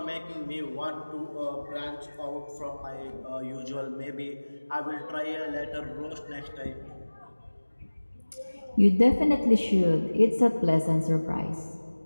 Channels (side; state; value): both; inverted; correlation -1.00